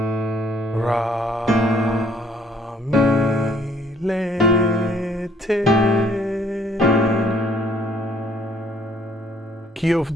Ra, mi, le, te. Key of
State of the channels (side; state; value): both; normal; correlation 0.62